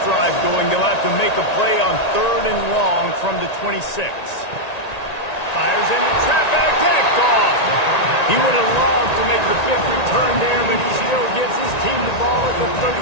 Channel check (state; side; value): late; right; 1.9 ms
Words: drive going. They'll have to make a play on 3rd and long from the 26. Fires into traffic, picked off. He would have loved to make the big return there, but he still gives his team the ball at the